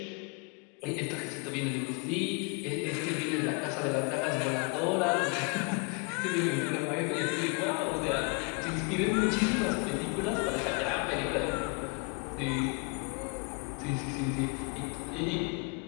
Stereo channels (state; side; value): quieter; right; 32.9 dB